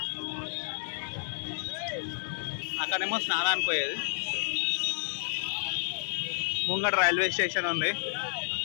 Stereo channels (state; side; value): silent; right; digital silence